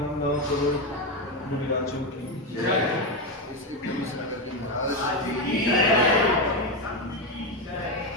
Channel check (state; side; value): normal; both; correlation 0.11